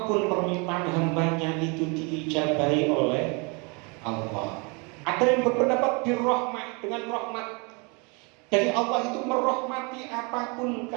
permintaan hambanya itu diijabahi oleh Allah. Ada yang berpendapat birrahmah, dengan rahmat. Jadi Allah itu merahmati apapun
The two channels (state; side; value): quieter; left; 31.3 dB